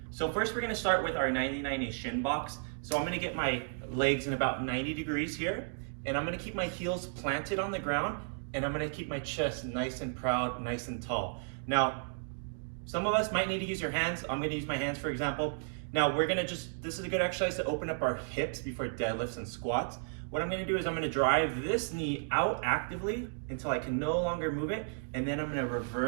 So first we're going to start with our 90-90 shin box. So I'm going to get my legs in about 90 degrees here, and I'm going to keep my heels planted on the ground, and I'm going to keep my chest nice and proud, nice and tall. Now, some of us might need to use your hands. I'm going to use my hands for example. Now we're going to this is a good exercise to open up our hips before deadlifts and squats. What I'm going to do is I'm going to drive this knee out actively until I can no longer move it, and then I'm going to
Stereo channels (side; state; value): left; silent; digital silence